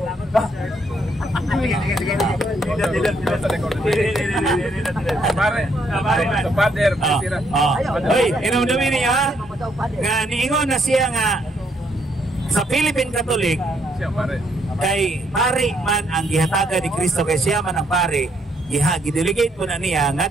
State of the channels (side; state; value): both; normal; correlation 0.72